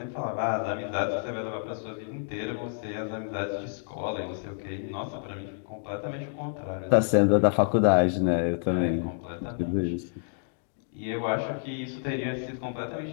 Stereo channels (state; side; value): silent; right; digital silence